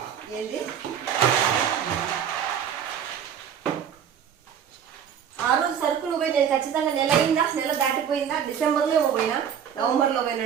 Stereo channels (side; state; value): left; quieter; 8.4 dB